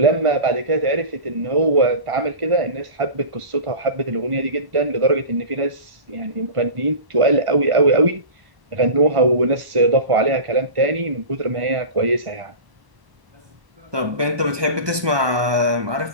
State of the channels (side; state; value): left; late; 1.2 ms